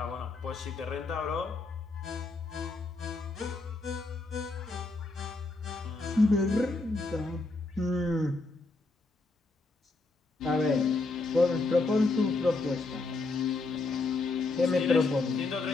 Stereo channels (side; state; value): right; quieter; 3.4 dB